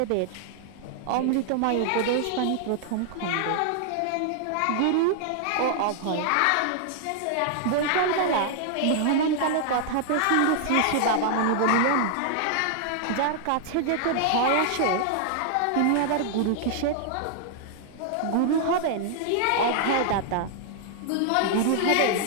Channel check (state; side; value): different; both; correlation -0.01